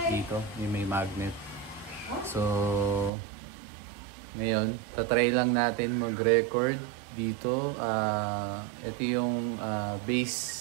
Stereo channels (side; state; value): left; drops out; at 3.1 s